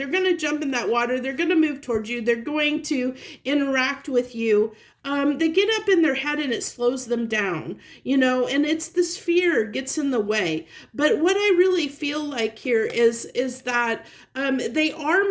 going to jump in that water, they're going to move towards you, they're going to interact with you. They get up in their head and it slows them down, and it's this fear gets in the way. But what I really feel like here is that they are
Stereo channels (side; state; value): both; identical; correlation 1.00